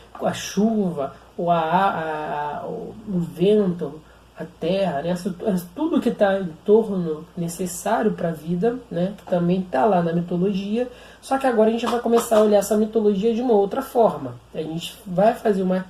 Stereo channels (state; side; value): identical; both; correlation 1.00